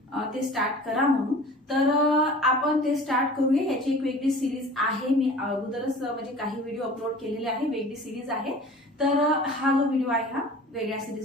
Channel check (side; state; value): both; normal; correlation 0.43